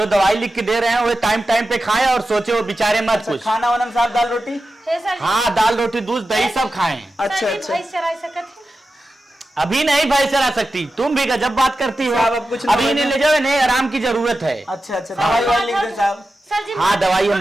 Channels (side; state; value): both; normal; correlation 0.92